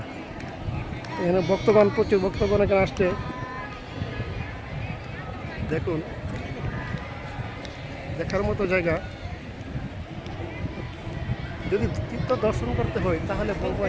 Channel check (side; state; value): both; identical; correlation 1.00